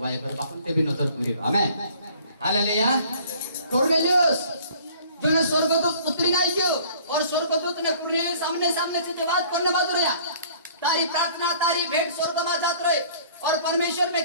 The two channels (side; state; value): both; inverted; correlation -0.53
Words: कर बापन ते भी नजर पूरी। आमीन, हालेलुया। कुरनेलियस जो ने स्वर्गदूत उतरी नहीं क्यों और स्वर्गदूत ने कुरनेलियस सामने सामने से जवाब करने बात रहा, तारी प्रार्थना तारी भेंट स्वर्ग में जात रहे और परमेश्वर में